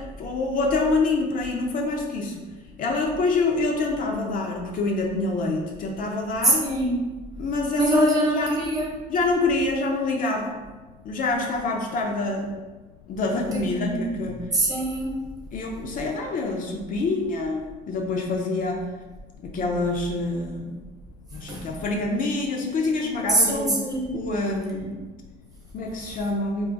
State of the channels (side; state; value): left; noise; rumble, 25 dB below the sound